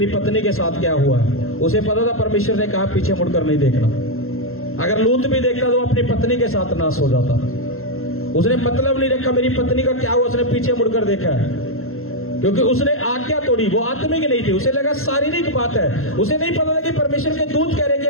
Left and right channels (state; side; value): late; right; 0.62 ms